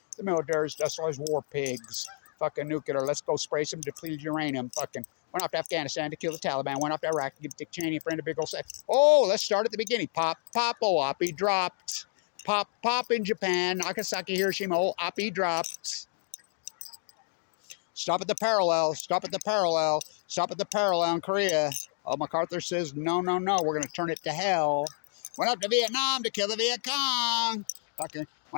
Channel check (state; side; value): silent; right; digital silence